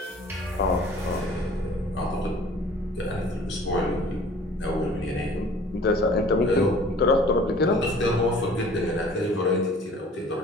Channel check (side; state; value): both; normal; correlation 0.49